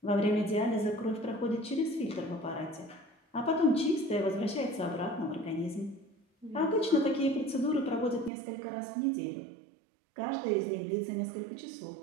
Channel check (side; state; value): left; drops out; at 8.3 s